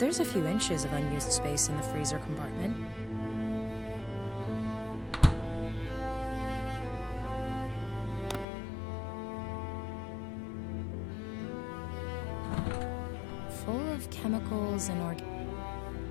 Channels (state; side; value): drops out; right; at 8.5 s